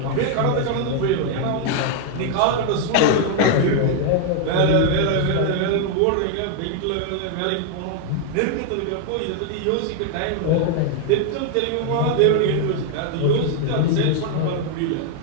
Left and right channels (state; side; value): different; both; correlation 0.00